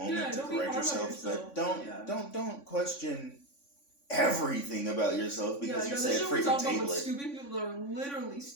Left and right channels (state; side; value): late; right; 3.5 ms